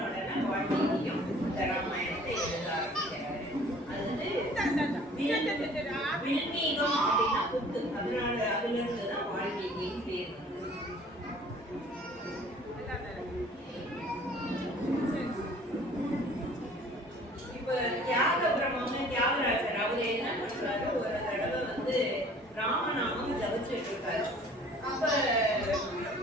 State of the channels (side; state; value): both; normal; correlation 0.51